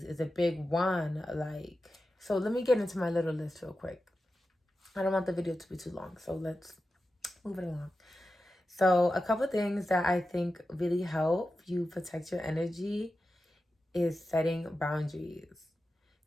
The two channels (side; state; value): both; normal; correlation 0.92